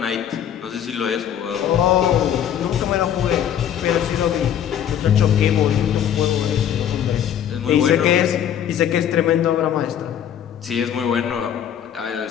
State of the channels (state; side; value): quieter; right; 9.6 dB